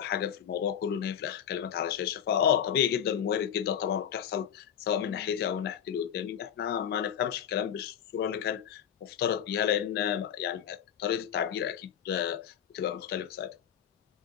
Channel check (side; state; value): right; quieter; 9.0 dB